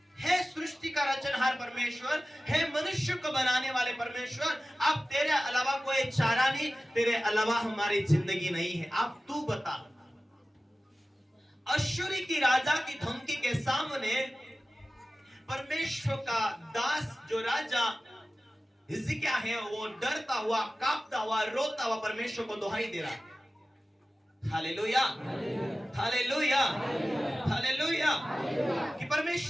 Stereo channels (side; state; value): both; normal; correlation 0.96